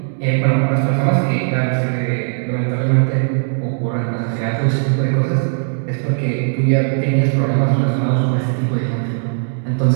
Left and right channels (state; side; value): silent; left; digital silence